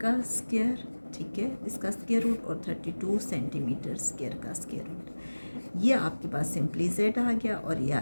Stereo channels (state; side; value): inverted; both; correlation -1.00